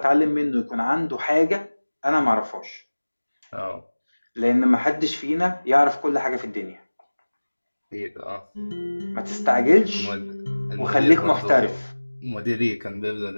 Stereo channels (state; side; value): inverted; both; correlation -1.00